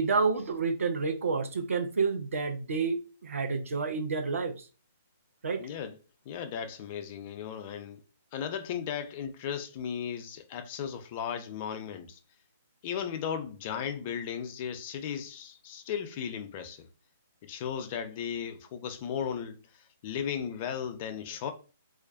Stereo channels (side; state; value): both; inverted; correlation -0.49